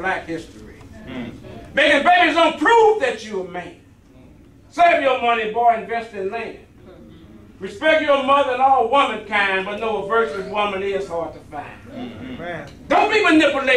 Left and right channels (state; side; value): identical; both; correlation 1.00